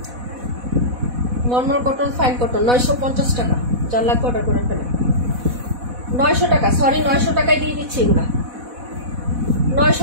নর্মাল কটন, ফাইন কটন 950 টাকা, যার লাগবে অর্ডার করে ফেলেন। 900 টাকা, সরি 900 টাকায় দিয়ে দিচ্ছি এগুলা,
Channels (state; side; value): late; left; 4.1 ms